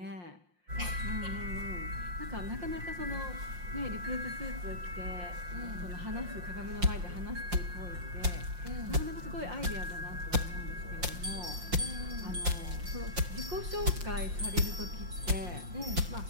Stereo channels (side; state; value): left; late; 5.6 ms